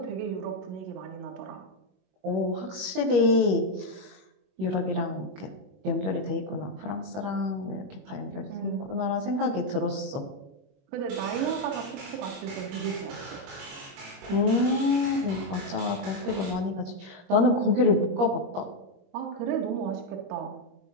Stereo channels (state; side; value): late; left; 21 ms